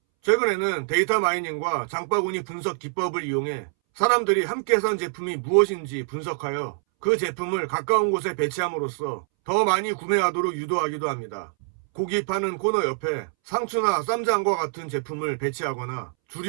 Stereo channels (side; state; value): left; silent; 62 dB below the other